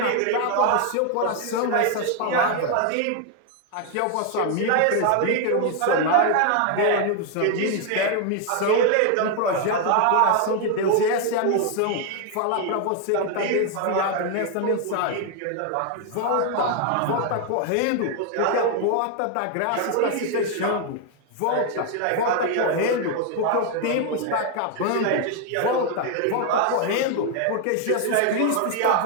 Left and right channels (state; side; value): different; both; correlation 0.01